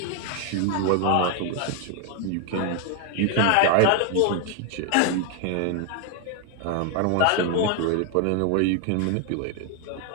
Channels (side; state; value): both; different; correlation 0.01